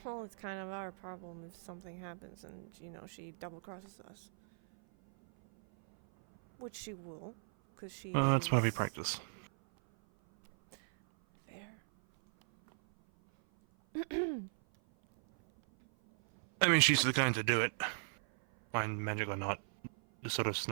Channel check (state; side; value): silent; left; 53 dB below the other